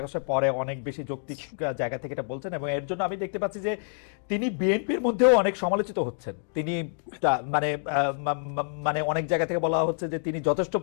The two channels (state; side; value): silent; right; digital silence